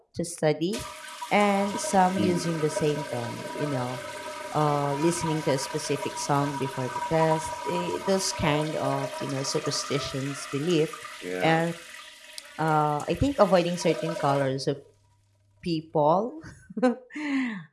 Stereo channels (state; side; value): identical; both; correlation 1.00